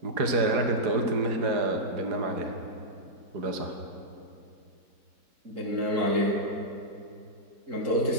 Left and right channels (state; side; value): late; left; 4.7 ms